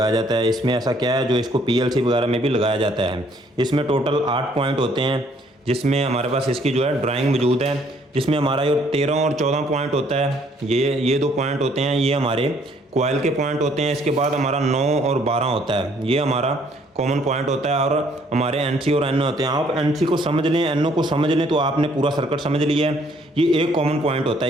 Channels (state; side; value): normal; both; correlation 0.64